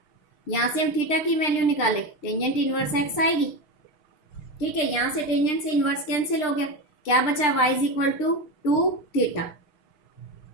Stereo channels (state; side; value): late; right; 6.6 ms